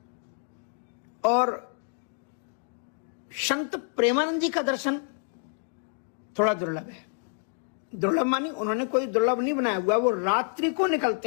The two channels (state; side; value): silent; right; 56 dB below the other